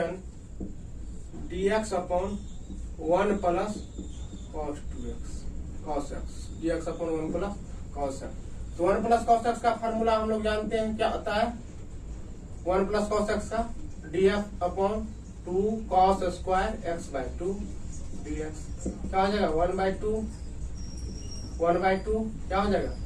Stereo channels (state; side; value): identical; both; correlation 1.00